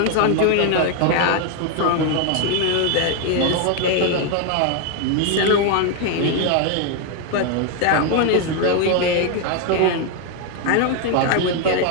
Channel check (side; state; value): both; different; correlation 0.01